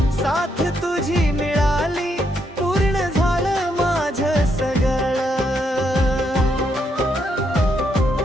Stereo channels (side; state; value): both; normal; correlation 0.77